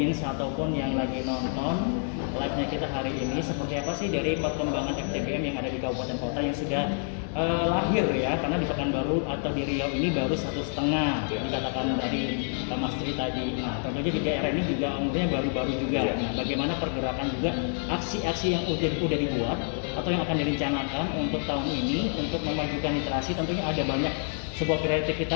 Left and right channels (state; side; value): silent; right; 56 dB below the other